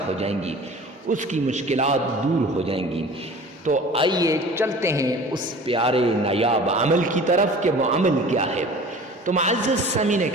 ہو جائیں گی، اس کی مشکلات دور ہو جائیں گی۔ تو آئیے چلتے ہیں اس پیارے نایاب عمل کی طرف کہ وہ عمل کیا ہے۔ تو معزز سامعین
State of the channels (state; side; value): normal; both; correlation 0.43